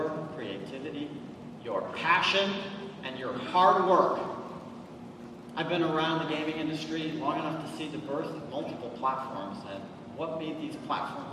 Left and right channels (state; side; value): identical; both; correlation 1.00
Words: creativity, your passion, and your hard work. I've been around the gaming industry long enough to see the birth of multiple platforms, and what made these